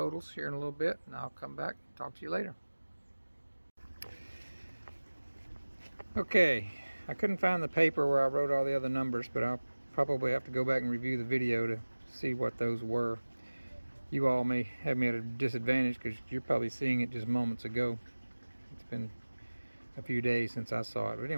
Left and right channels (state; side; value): inverted; both; correlation -1.00